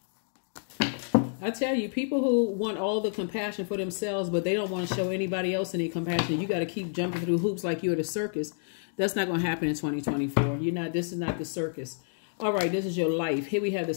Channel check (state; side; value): silent; right; digital silence